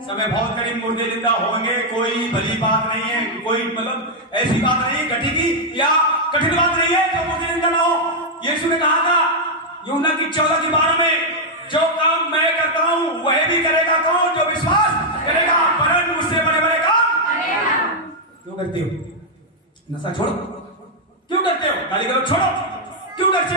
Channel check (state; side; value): normal; both; correlation -0.02